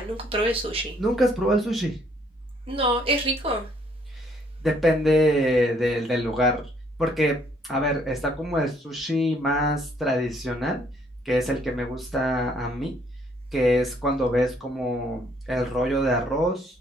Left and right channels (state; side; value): normal; both; correlation 0.66